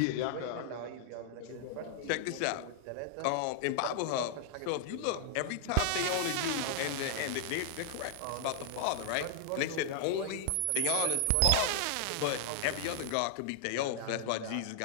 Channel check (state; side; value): different; both; correlation -0.01